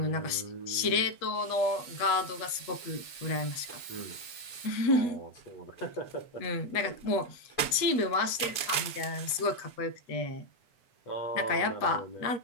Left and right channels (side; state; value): right; late; 8.3 ms